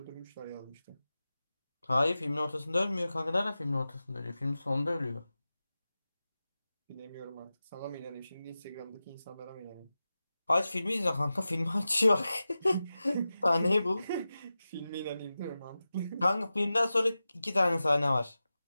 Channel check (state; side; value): inverted; both; correlation -0.94